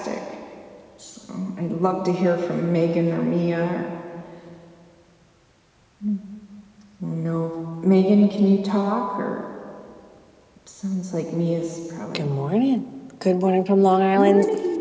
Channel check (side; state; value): both; identical; correlation 1.00